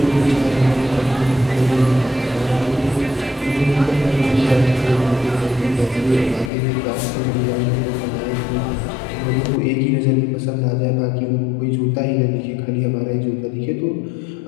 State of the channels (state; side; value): drops out; right; at 6.5 s